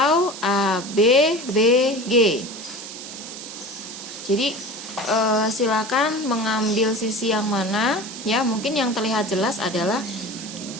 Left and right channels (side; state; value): right; noise; hiss, 11 dB below the sound